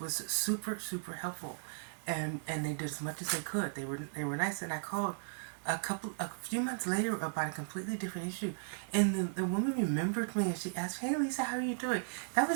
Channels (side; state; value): left; silent; digital silence